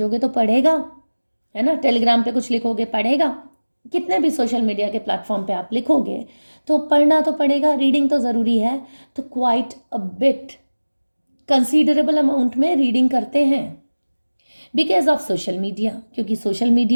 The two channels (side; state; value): both; inverted; correlation -1.00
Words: तो पढ़ेगा, है ना, टेलीग्राम पे कुछ लिखोगे पढ़ेगा, कितने भी सोशल मीडिया के प्लेटफॉर्म पे आप लिखोगे तो पढ़ना तो पड़ेगा, रीडिंग तो ज़रूरी है। तो quite a bit, considerable amount में रीडिंग करते हैं बिकॉज ऑफ सोशल मीडिया, क्योंकि सोशल